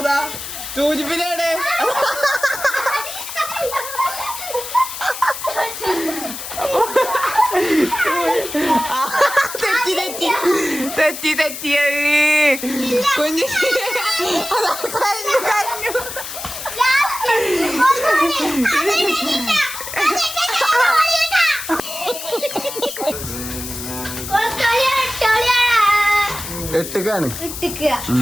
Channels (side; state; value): left; noise; hiss, 8 dB below the sound